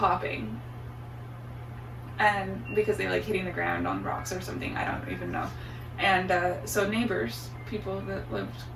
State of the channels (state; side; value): identical; both; correlation 1.00